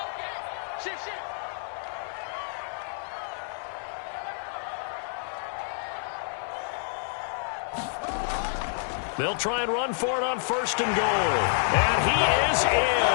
They'll try and run for it on 1st and goal. And he is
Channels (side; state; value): right; silent; digital silence